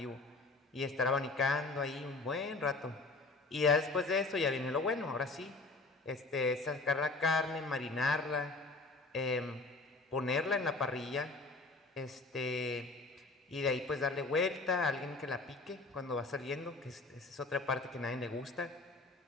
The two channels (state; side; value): quieter; right; 3.5 dB